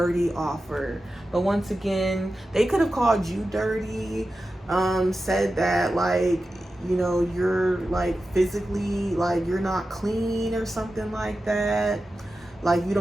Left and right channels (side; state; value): both; normal; correlation 0.92